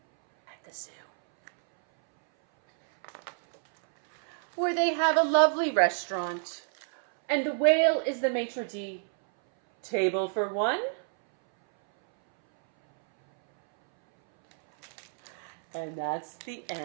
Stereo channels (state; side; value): silent; left; 59 dB below the other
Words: zoo, where they have a lovely restaurant, and the whale is the maitre d'. Table for one. And that's the